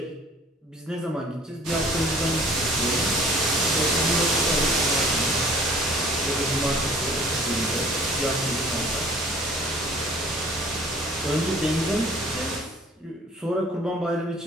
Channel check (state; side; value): normal; both; correlation 0.52